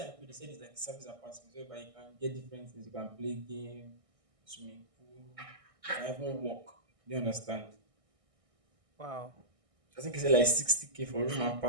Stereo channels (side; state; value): left; late; 1.6 ms